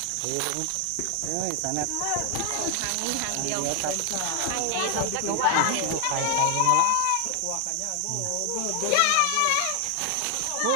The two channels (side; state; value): both; different; correlation 0.00